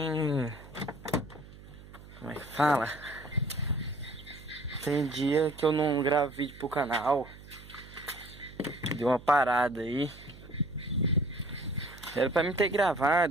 Como é que fala? Tem dia que eu não gravo vídeo pro canal. Deu uma parada aí. Era pra mim ter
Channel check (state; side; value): noise; right; hum, 18 dB below the sound